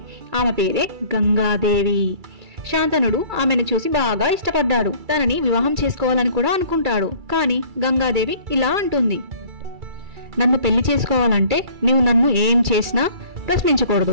ఆమె పేరే గంగాదేవి. శాంతనుడు ఆమెను చూసి బాగా ఇష్టపడ్డాడు. తనని వివాహం చేసుకోవాలని కూడా అనుకుంటాడు. కానీ గంగాదేవి ఇలా అంటుంది, నన్ను పెళ్లి చేసుకోవాలంటే నీవు నన్ను ఏం చేసినా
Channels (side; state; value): left; late; 2.3 ms